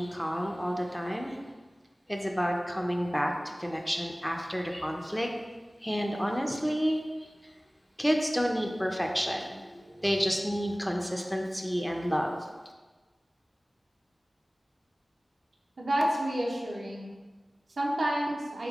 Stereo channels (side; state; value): both; normal; correlation 0.98